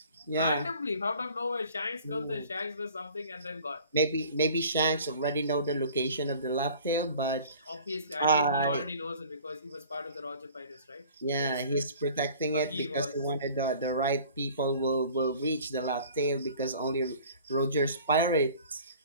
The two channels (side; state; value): both; inverted; correlation -0.48